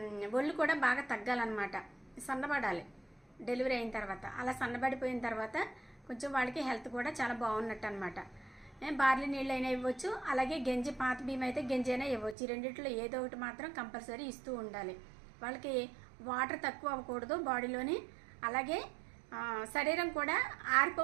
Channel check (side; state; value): left; drops out; at 12.4 s